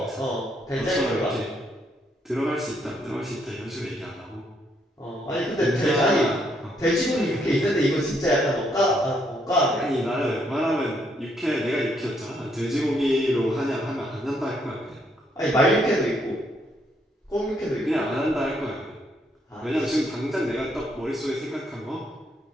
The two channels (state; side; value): normal; both; correlation 0.73